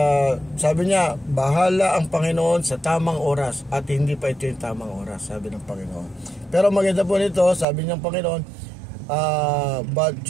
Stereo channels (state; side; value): drops out; left; at 7.7 s